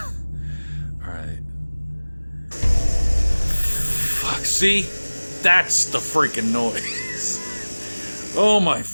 Alright. Fuck, see? That's the freaking noise. Oh my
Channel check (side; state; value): both; inverted; correlation -1.00